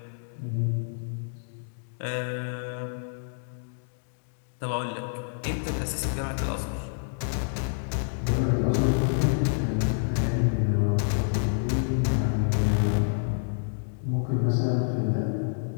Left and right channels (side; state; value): right; silent; digital silence